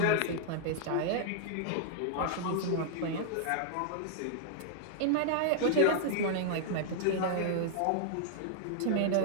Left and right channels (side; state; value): both; different; correlation -0.01